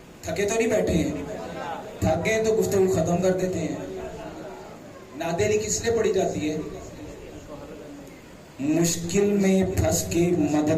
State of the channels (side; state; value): both; identical; correlation 1.00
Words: تھکے تو نہیں بیٹھے ہیں، تھک گئے تو گفتگو ختم کر دیتے ہیں۔ ناد علی کس لیے پڑھی جاتی ہے؟ مشکل میں پھنس کے